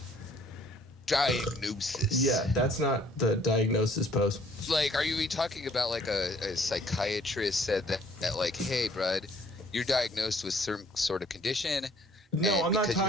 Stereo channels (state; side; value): normal; both; correlation 0.60